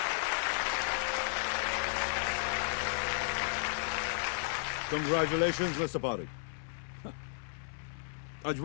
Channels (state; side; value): silent; right; 55 dB below the other